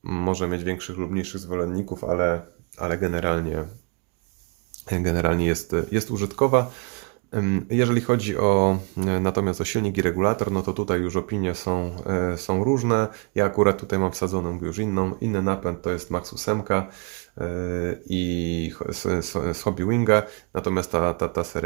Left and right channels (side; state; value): left; quieter; 33.7 dB